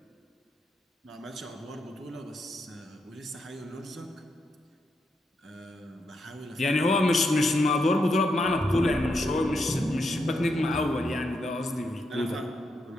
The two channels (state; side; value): normal; both; correlation 0.82